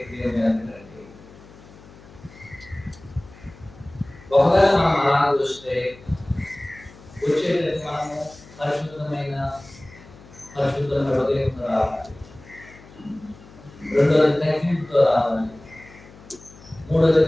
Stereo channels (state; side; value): noise; left; hum, 22 dB below the sound